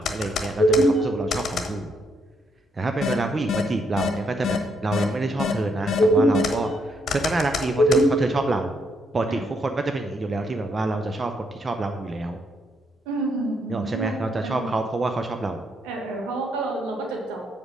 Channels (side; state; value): both; normal; correlation 0.75